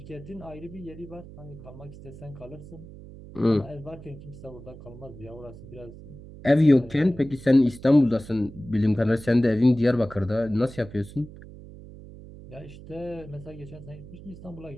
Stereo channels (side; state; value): right; noise; hum, 16 dB below the sound